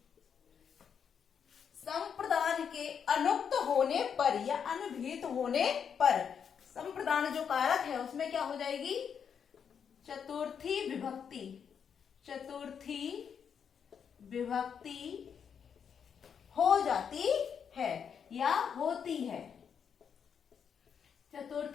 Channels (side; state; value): right; quieter; 7.3 dB